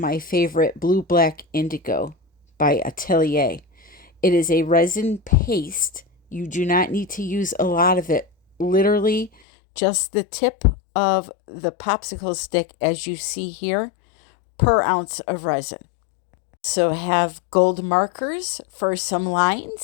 favorite Blue Black Indigo by Atelier. It is a resin paste. You do not need to use a lot of it. Literally, just the tip of the popsicle stick, as you see here, per ounce of resin. So have gold markers for some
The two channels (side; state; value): right; drops out; at 9.3 s